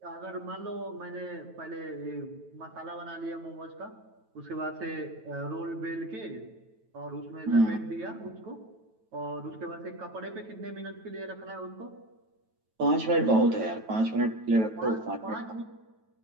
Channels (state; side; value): late; left; 9.1 ms